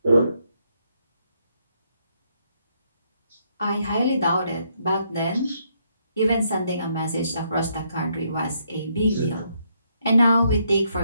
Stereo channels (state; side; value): inverted; both; correlation -0.75